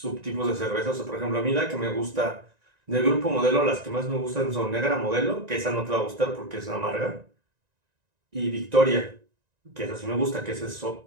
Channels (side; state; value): left; late; 1.9 ms